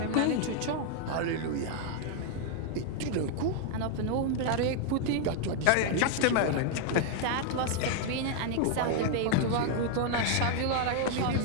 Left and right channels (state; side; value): different; both; correlation 0.00